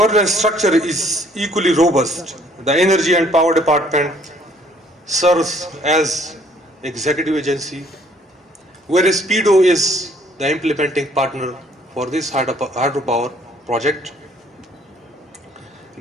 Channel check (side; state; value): both; normal; correlation 0.61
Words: structure is equally robust. The Energy and Power Department serves as executive agency, whereas PEDO is the implementing partner for this hydropower project.